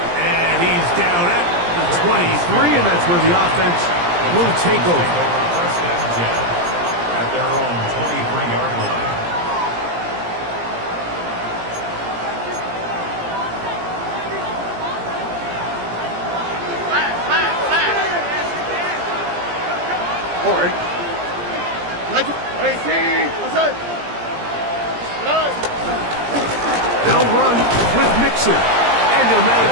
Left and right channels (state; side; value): late; left; 17 ms